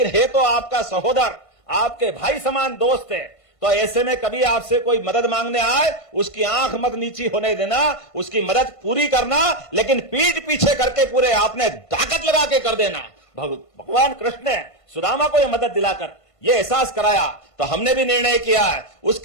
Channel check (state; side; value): late; right; 1.5 ms